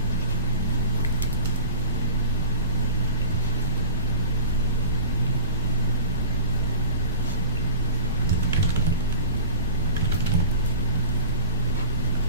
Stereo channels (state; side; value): inverted; both; correlation -0.38